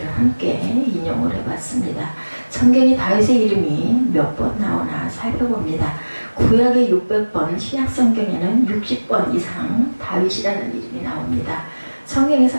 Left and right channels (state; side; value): inverted; both; correlation -1.00